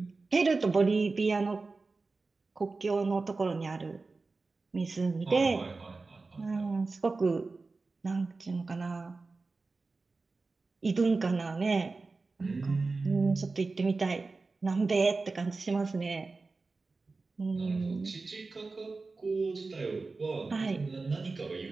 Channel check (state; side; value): quieter; left; 3.8 dB